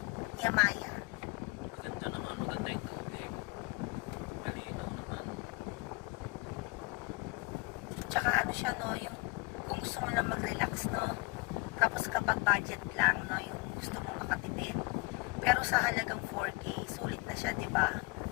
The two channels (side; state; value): right; quieter; 26.9 dB